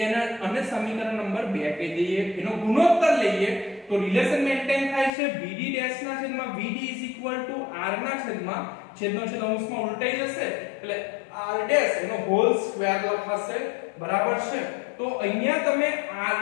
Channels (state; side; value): drops out; right; at 5.1 s